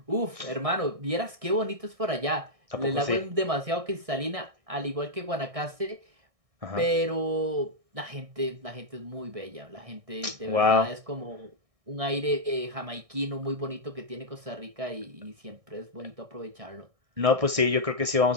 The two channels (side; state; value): left; late; 1.6 ms